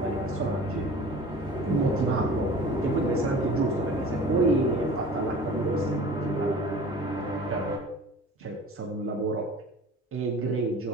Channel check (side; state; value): both; normal; correlation 0.42